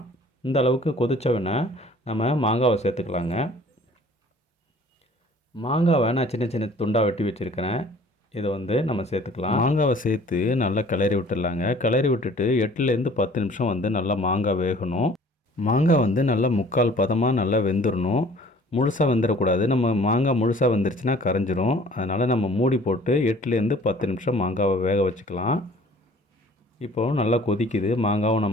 இந்த அளவுக்கு கொதித்தவொடனே நம்ம மாங்காவை சேர்த்துக்கலாங்க. மாங்காவை நான் சின்ன சின்ன துண்டாக வெட்டி வச்சுருக்கிறேன். இதை நம்ம சேர்த்துக்கலாம். மாங்காவை சேர்த்து நல்லா கிளறி விட்டுடலாங்க. கிளறி விட்டுட்டு 8லேருந்து 10 நிமிஷம் நல்லா மாங்காய் வேகணும். மாங்காய் நல்லா முக்கால் பதமாக நல்லா வெந்துடணும். முழுசாக வெந்துடக்கூடாது. நம்ம மாங்காய் முழுசாக வெந்துருச்சுன்னா கரைஞ்சிரும். அதனால் நம்ம மூடி போட்டு 8லேருந்து 10 நிமிஷம் மாங்காவை வேக வச்சுக்கலாம். இப்போது நல்லா கொதிக்குது. மாங்காவும்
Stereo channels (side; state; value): both; normal; correlation 0.51